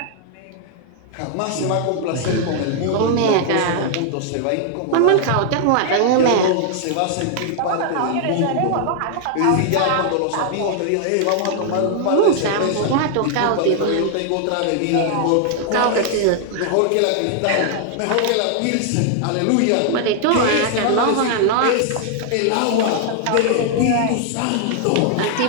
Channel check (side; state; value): both; different; correlation 0.00